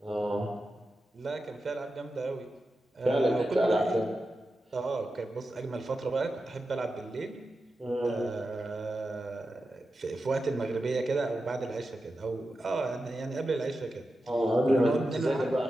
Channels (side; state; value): both; normal; correlation 0.91